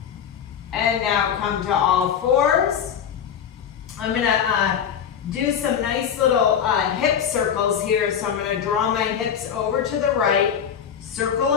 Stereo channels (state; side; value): quieter; right; 8.3 dB